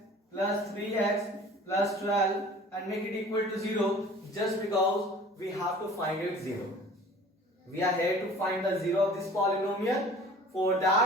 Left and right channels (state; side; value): normal; both; correlation 0.45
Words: plus 3x plus 12 and make it equal to 0, just because we have to find it 0. We are here to find the 0 of this polynomial. For